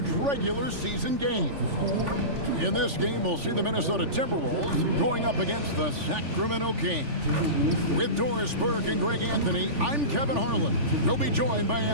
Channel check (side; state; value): left; late; 3.4 ms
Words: regular season game. In this game, we'll see the Minnesota Timberwolves going up against the Sacramento Kings. With Doris Burke and Greg Anthony, I'm Kevin Harlan. We'll be joined by